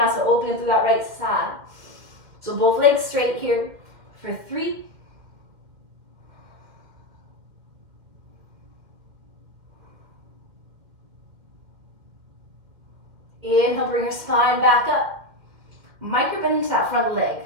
opening through that right side. So both legs straight here for 3. Inhale, bring your spine back up. Micro bend into that front leg.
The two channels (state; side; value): late; left; 2.1 ms